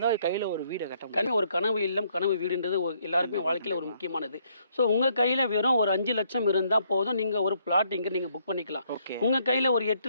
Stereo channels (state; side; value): inverted; both; correlation -0.70